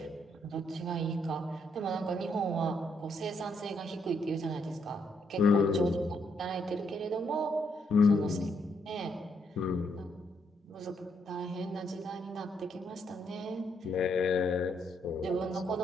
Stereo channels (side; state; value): both; normal; correlation 0.74